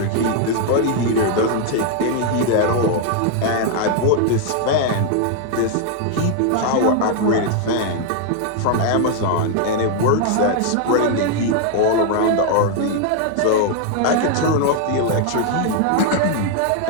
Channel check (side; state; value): both; different; correlation 0.00